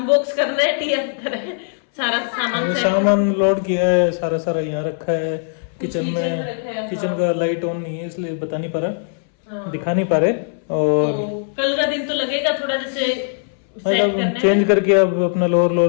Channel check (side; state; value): right; silent; 64 dB below the other